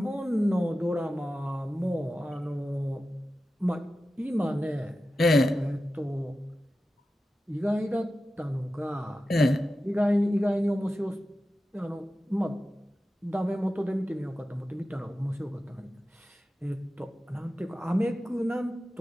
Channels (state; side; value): normal; both; correlation 0.93